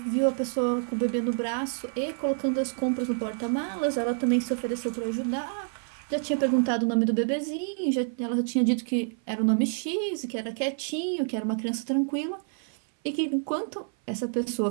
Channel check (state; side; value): silent; left; 57 dB below the other